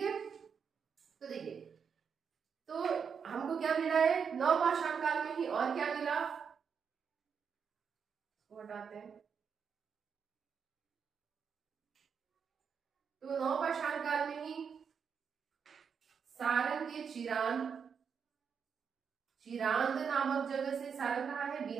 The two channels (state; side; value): quieter; left; 6.6 dB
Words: तो देखिए, तो हमको क्या मिला है, नवपाषाण काल में ही, और क्या मिला, हटाते हैं। तो नवपाषाण काल में ही सारण के चिरांद नामक जगह से, सारण कहाँ है,